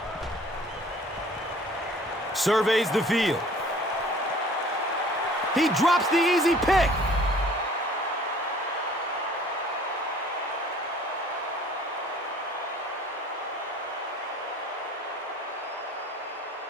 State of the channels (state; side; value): normal; both; correlation 0.51